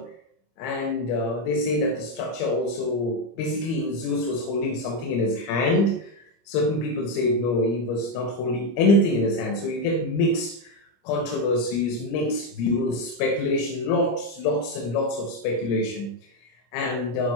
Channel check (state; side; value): late; right; 25 ms